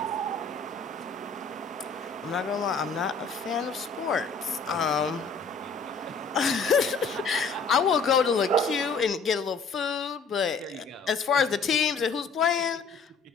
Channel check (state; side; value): quieter; right; 4.4 dB